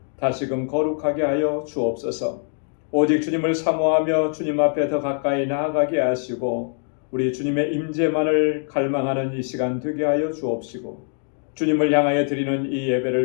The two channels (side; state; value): right; silent; 56 dB below the other